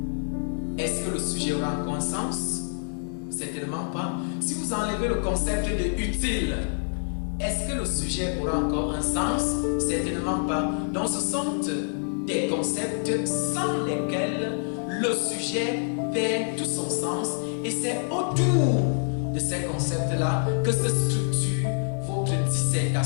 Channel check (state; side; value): silent; right; 60 dB below the other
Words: est-ce que le sujet aura encore un sens? Certainement pas. Si vous enlevez le concept de utile, est-ce que le sujet aura encore un sens? Certainement pas. Donc ce sont des concepts sans lesquels le sujet perd tout son sens, et c'est autour de ces concepts-là que se structure votre